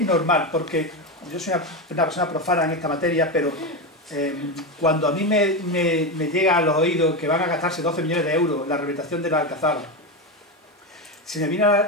normal, porque yo soy una persona profana en esta materia, pero cuando a mí me llega a los oídos que van a gastarse 12 millones de euros en la rehabilitación de la Alcazaba, se me viene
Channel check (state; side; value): normal; both; correlation 0.14